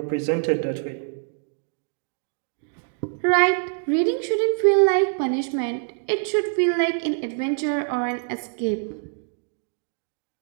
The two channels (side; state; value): left; silent; 58 dB below the other